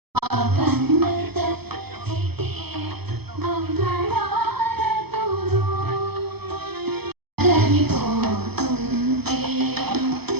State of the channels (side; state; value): left; late; 0.97 ms